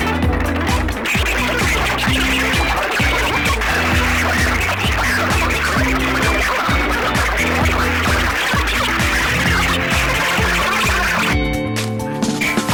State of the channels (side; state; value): both; identical; correlation 1.00